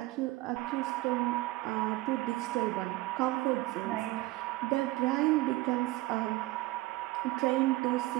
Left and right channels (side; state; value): left; quieter; 19.1 dB